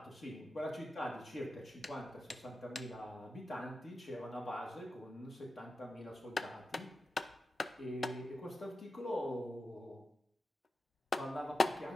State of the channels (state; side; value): normal; both; correlation 0.91